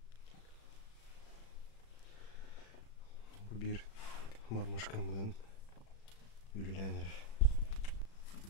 Bu bir marmuşkamdan ülülenir.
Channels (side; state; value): right; late; 36 ms